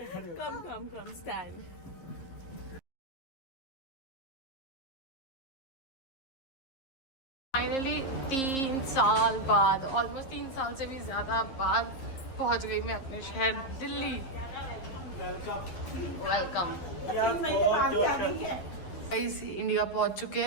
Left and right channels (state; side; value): late; right; 12 ms